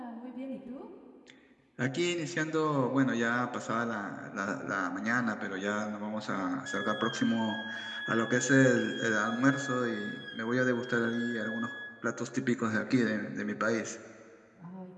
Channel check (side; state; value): both; identical; correlation 1.00